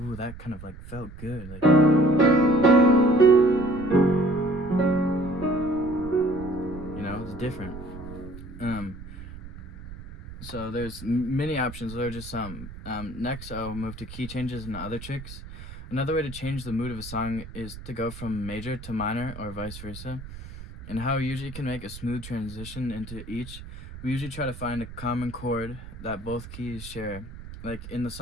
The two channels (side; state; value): right; noise; rumble, 13 dB below the sound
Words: that kind of like felt good. Like, it's different. So there's many options. There are just some. Next, I'll move to key changes and other tricks. Another way to change the mood of a song is to go from major to minor or vice versa. And how we usually can make a smooth transition into each, we usually try to find a common chord that both keys share. Like in the